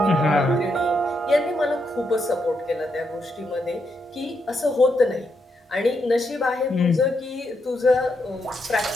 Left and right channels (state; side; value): normal; both; correlation 0.81